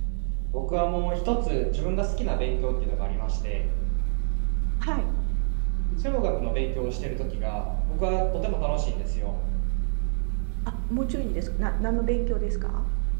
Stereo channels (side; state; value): left; silent; 61 dB below the other